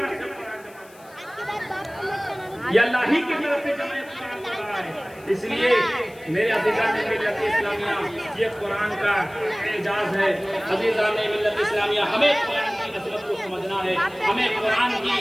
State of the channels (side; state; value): left; noise; hiss, 25 dB below the sound